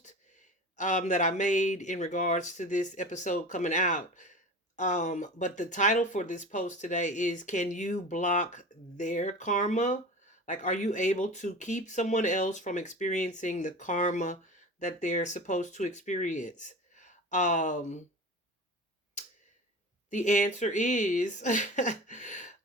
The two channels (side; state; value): both; normal; correlation 0.33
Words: that I made in regards to this episode coming out. But the title for this post today is Can You Block Their Karma? Like, are you able to keep someone else from experiencing the karma that they're supposed to experience? Um, the answer is,